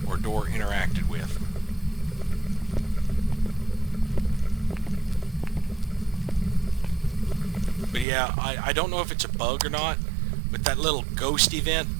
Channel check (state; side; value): drops out; left; at 8.1 s